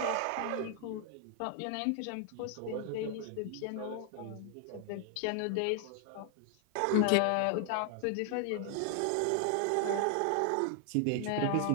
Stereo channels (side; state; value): both; different; correlation 0.00